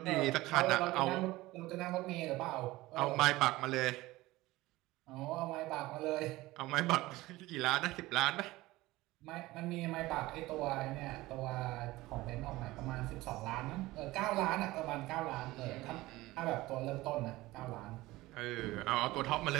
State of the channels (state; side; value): quieter; left; 18.8 dB